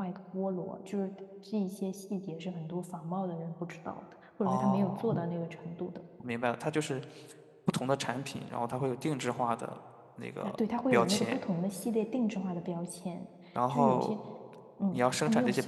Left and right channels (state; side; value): identical; both; correlation 1.00